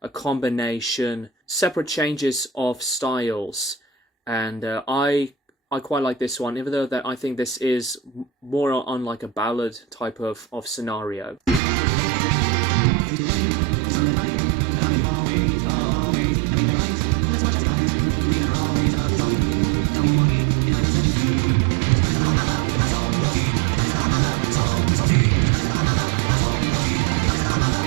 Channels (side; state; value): left; drops out; at 11.6 s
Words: combination, separate changes of styles, and I quite like this one, even though that I think this is more on like a ballad type of scenario.